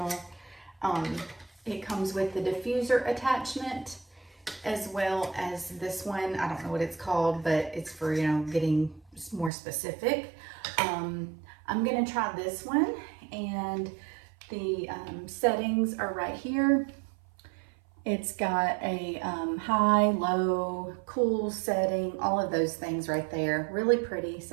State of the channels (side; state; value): left; drops out; at 9.5 s